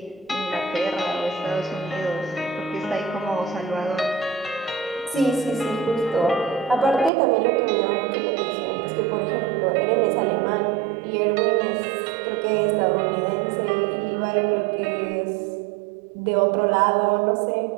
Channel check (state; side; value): drops out; left; at 7.1 s